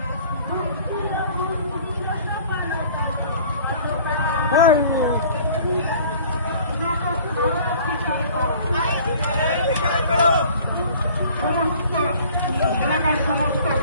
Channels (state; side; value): inverted; both; correlation -0.50